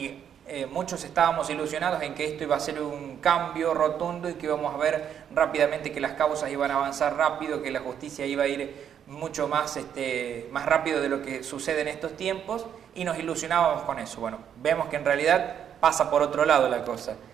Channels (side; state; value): left; quieter; 8.8 dB